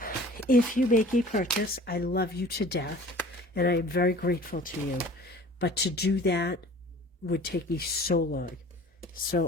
If you make a purchase, I love you to death and I am very grateful to you. But to do that would take me so long. So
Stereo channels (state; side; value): normal; both; correlation 0.46